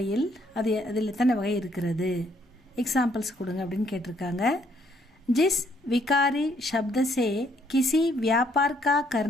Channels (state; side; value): normal; both; correlation 0.69